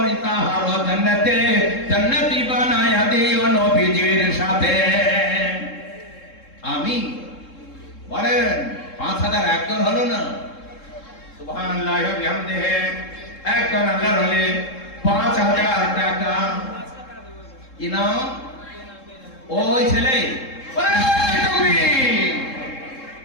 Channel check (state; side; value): late; right; 3.7 ms